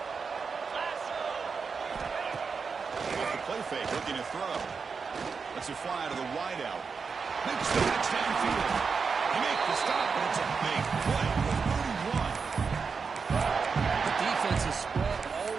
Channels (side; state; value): left; quieter; 5.3 dB